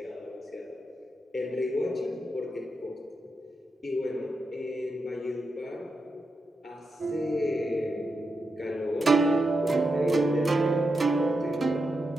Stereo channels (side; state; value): both; normal; correlation 0.86